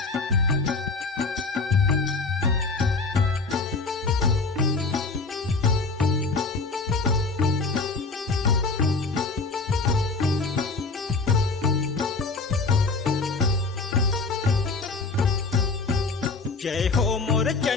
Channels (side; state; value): right; quieter; 3.9 dB